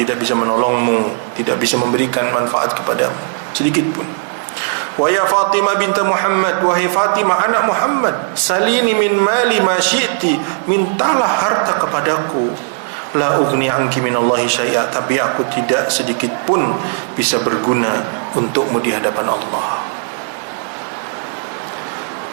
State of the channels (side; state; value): left; silent; 64 dB below the other